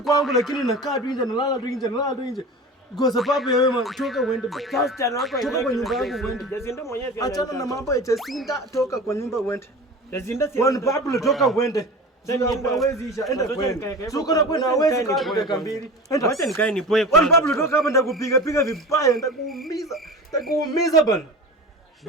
lakini nakaa tu nje, nalala tu nje. Kwa sababu ya wewe toka uende. Toka kwa nyumba yangu uende. Achana na mambo ya Jacinta, toka kwa nyumba uende. Jacinta si one Pablo, toka uende. Hawezi isha, enda kwenda. Suko na kwenda hawezi kaa dakika mbili. Acha nikae nipoe kwa. One Pablo, toka hapa nitakupiga vibaya, nitakuumiza bana.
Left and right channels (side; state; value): both; normal; correlation 0.33